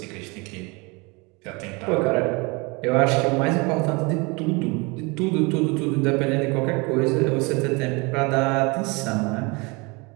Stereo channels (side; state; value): left; quieter; 27.7 dB